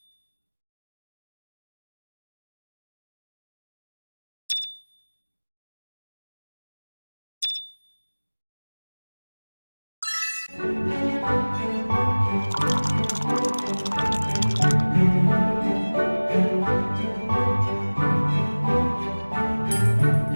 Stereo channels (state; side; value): inverted; both; correlation -1.00